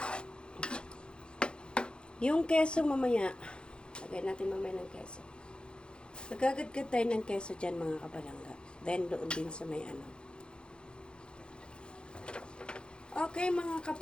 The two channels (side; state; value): right; late; 0.052 ms